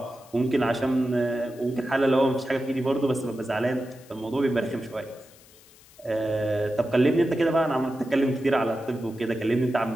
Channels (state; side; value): noise; left; hiss, 25 dB below the sound